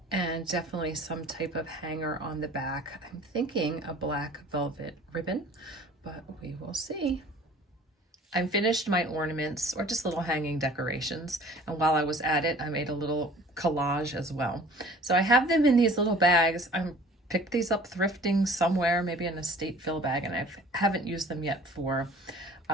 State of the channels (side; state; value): both; normal; correlation 0.49